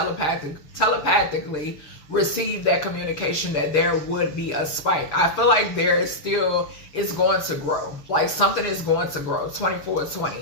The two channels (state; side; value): late; right; 6.9 ms